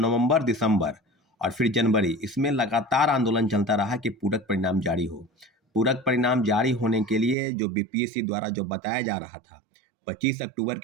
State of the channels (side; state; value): left; drops out; at 7.4 s